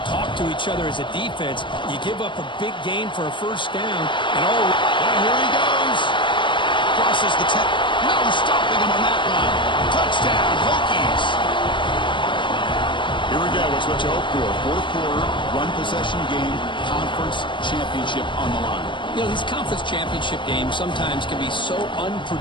talk to each other as a defense. You give up a big gain for a first down, and here he goes. Crosses the 10. No stopping him on that one. Touchdown, Hokies. Here we go. It's what you hope for. Fourth quarter, one possession game, conference championship on the line. You know, these conference championship games sometimes can be so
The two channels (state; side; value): late; right; 0.23 ms